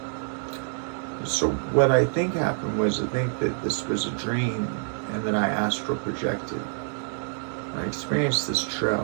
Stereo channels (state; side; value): silent; left; digital silence